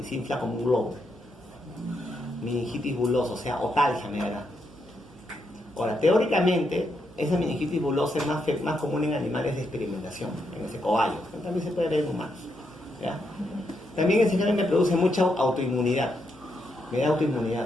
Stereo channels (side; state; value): right; noise; hum, 28 dB below the sound